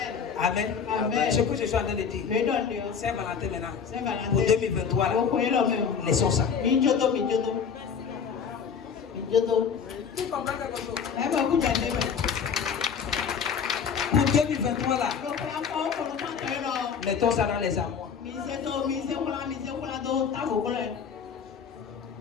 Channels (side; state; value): right; quieter; 6.7 dB